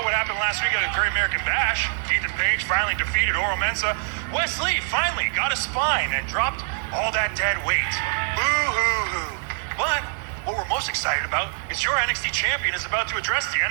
what happened last week at the Great American Bash. Ethan Page finally defeated Oro Mensah. Wes Lee finally got a spine and dropped all that dead weight. Boo-hoo-hoo. But what we're most excited about is your NXT champion is about to address the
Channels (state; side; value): silent; left; 60 dB below the other